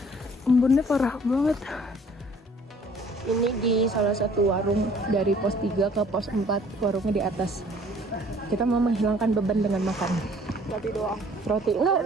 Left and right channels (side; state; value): both; normal; correlation 0.55